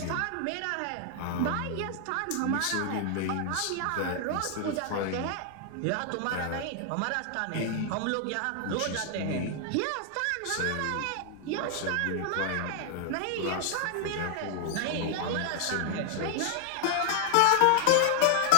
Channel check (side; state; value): both; different; correlation -0.01